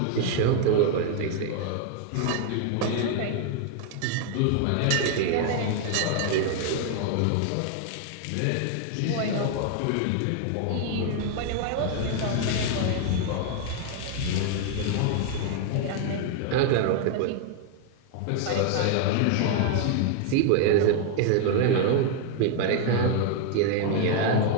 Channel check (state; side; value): different; both; correlation 0.00